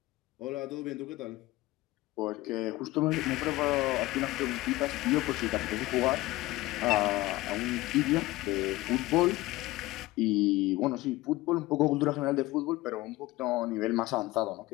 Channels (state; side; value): quieter; right; 18.9 dB